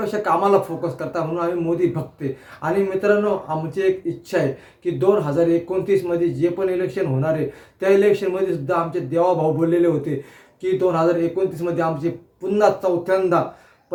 कामाला फोकस करता, म्हणून आम्ही मोदी भक्ते. आणि मित्रांनो, आमची एक इच्छा आहे की 2029 मध्ये जे पण इलेक्शन होणार आहे, त्या इलेक्शनमध्ये सुद्धा आमचे देवाभाऊ बोललेले होते की 2029 मध्ये आमचे पुन्हा चौथ्यांदा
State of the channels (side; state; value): both; identical; correlation 1.00